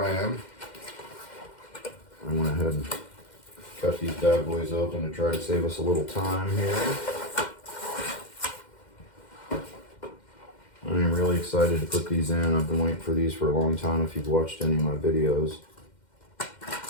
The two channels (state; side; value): late; right; 2.1 ms